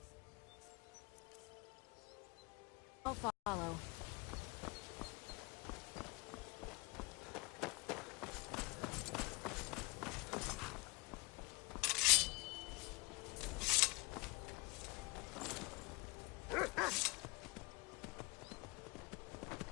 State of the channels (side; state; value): right; quieter; 27.8 dB